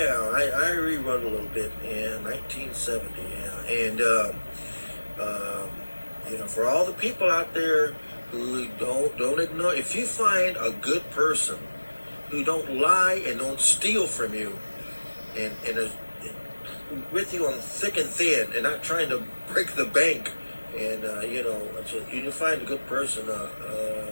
I rewrote a little bit. Yeah, 1970. Yeah, and for all the people out there who don't ignore, if you find a good person who don't lie and don't steal from you, and is with you on thick and thin, and not trying to break the bank, and you find a good person.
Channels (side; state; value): both; inverted; correlation -1.00